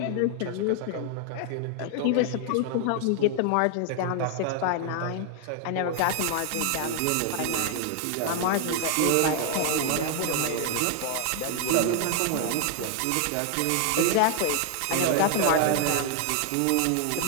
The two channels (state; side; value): different; both; correlation 0.00